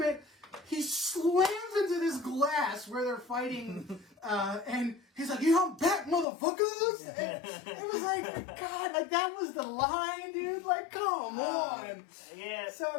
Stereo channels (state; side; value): drops out; right; at 6.2 s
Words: he slams into this glass where they're fighting, and he's like, "Yeah, I'm back, motherfuckers!" And it was like, God, like that was the line, dude. Like, come on. Yeah.